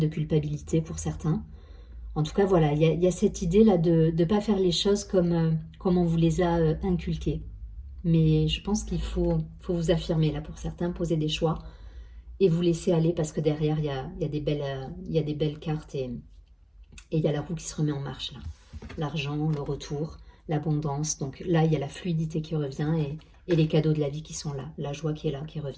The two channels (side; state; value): both; identical; correlation 1.00